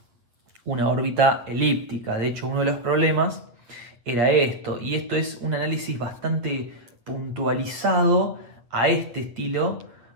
una órbita elíptica. De hecho, uno de los problemas era esto, y esto es un análisis bastante puntualizado a este estilo,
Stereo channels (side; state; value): left; late; 8.1 ms